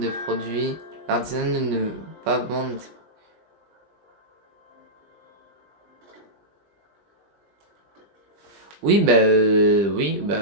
produits. L'artisanat ne peut pas vendre. Oui, oui,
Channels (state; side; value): late; left; 20 ms